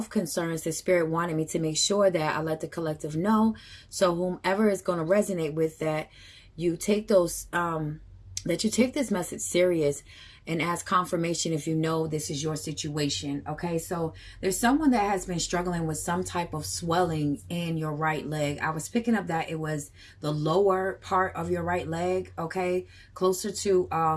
concerns that Spirit wanted me to make sure that I let the collective know. So whomever is going to resonate with that, you take those that you take this message serious and ask confirmation if you know this is your situation. Okay, so there's someone that has been struggling with some type of swelling in your right leg. I was picking up that it was the lower part of your right leg, okay, closer to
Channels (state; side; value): identical; both; correlation 1.00